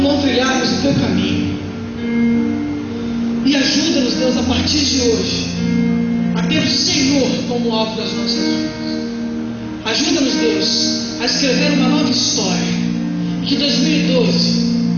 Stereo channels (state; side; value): identical; both; correlation 1.00